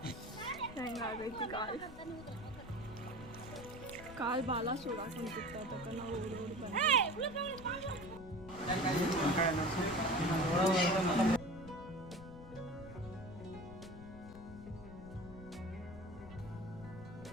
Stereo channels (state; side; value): noise; left; rumble, 15 dB below the sound